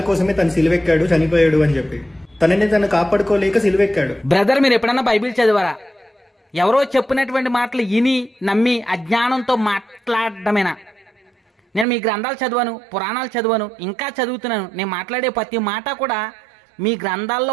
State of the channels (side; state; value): left; drops out; at 11.9 s